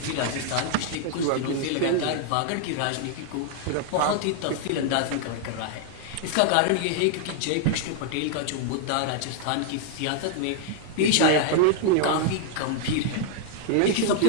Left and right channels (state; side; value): different; both; correlation -0.01